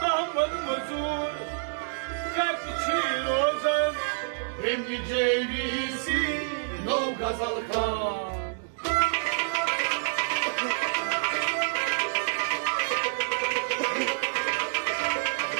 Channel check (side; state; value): left; silent; digital silence